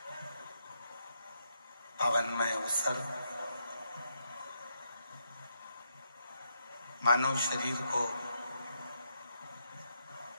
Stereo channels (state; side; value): inverted; both; correlation -0.80